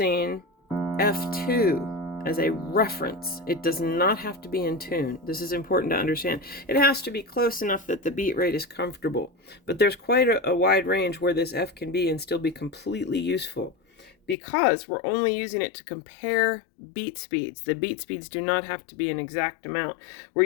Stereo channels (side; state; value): right; drops out; at 14.4 s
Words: F2 as a reference. It does not have to be in tune. This is important to understand. It has to be close enough that the beat rate is comfortable, but there's quite a wide range where this F can be and still be completely useful, because we're only using it to compare beat speeds. The beat speeds do not have to be an exact amount. We're